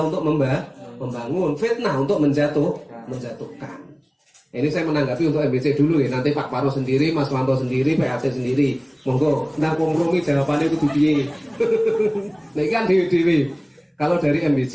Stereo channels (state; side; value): identical; both; correlation 1.00